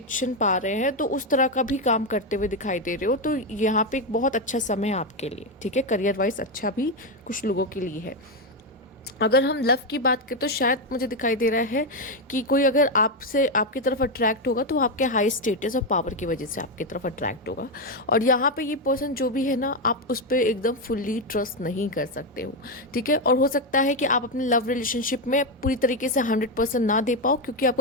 पा रहे हैं। तो उस तरह का भी काम करते हुए दिखाई दे रहे हो। तो यहाँ पे एक बहुत अच्छा समय है आपके लिए। ठीक है, करियर वाइज अच्छा भी कुछ लोगों के लिए है। अगर हम लव की बात करें तो शायद मुझे दिखाई दे रहा है कि कोई अगर आपसे आपकी तरफ अट्रैक्ट होगा तो वो आपके हाई स्टेटस और पावर की वजह से आपकी तरफ अट्रैक्ट होगा। और यहाँ पे ये पर्सन जो भी है ना, आप उस पर एकदम फुल्ली ट्रस्ट नहीं कर सकते हो। ठीक है, और हो सकता है कि आप अपने लव रिलेशनशिप में पूरी तरीके से 100% ना दे पाओ, क्योंकि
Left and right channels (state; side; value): normal; both; correlation 0.07